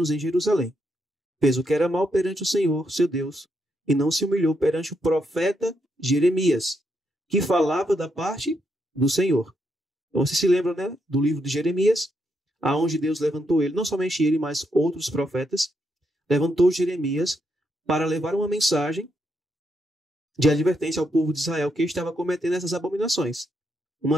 em Jerusalém. Fez o que era mal perante o Senhor, seu Deus, e não se humilhou perante o profeta Jeremias, que falava da parte do Senhor. Então, você se lembra, né, do livro de Jeremias, aonde Deus levantou ele, não somente ele, mas outros profetas, levantou Jeremias para levar uma mensagem de advertência ao povo de Israel que estava cometendo essas abominações.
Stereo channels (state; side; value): normal; both; correlation 0.79